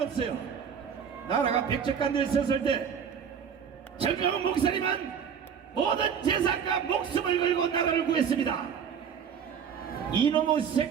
없어요. 나라가 백척간도에 있었을 때 정강훈 목사님은 모든 재산과 목숨을 걸고 나라를 구했습니다. 이놈의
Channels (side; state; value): left; quieter; 7.5 dB